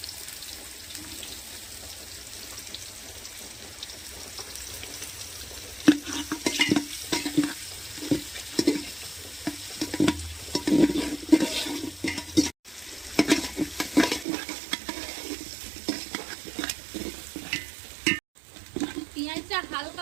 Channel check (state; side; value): drops out; left; at 14.2 s